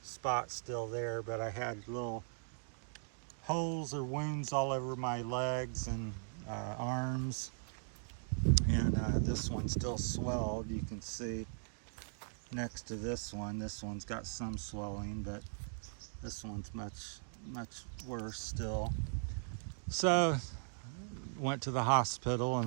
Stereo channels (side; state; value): left; silent; digital silence